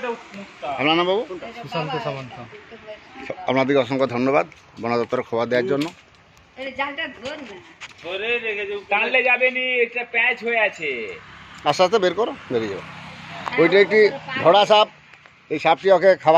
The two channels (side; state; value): both; identical; correlation 1.00